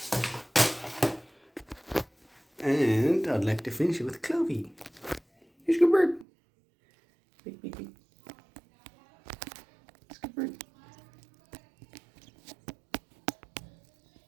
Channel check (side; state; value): left; drops out; at 6.2 s